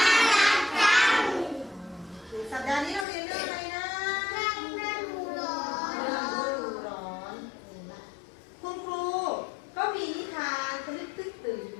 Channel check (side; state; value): right; drops out; at 3.1 s